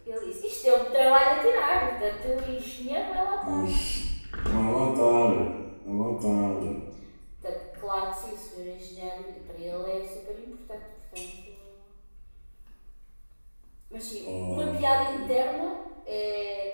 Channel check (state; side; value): inverted; both; correlation -1.00